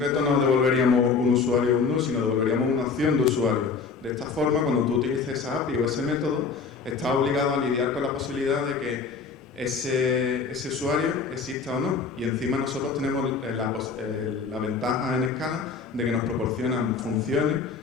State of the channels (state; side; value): quieter; right; 5.1 dB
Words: no devolveríamos un usuario o un null, sino devolveríamos una opción de usuario. De esta forma, cuando tú utilices esa API o ese método, estás obligado a lidiar con la posibilidad de que ese usuario exista o no, y encima nosotros tenemos la ventaja en Scala de que nos proporcionan funciones